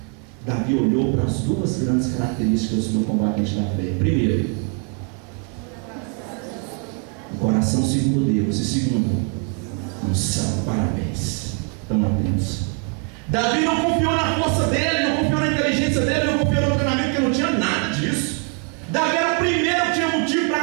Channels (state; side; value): quieter; left; 33.8 dB